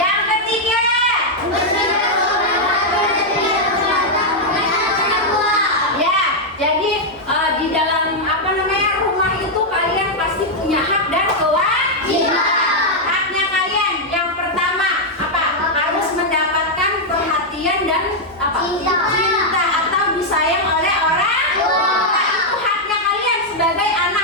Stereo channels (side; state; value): both; normal; correlation -0.02